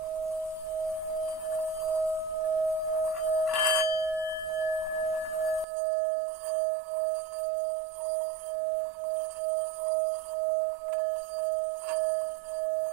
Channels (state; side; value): drops out; left; at 5.7 s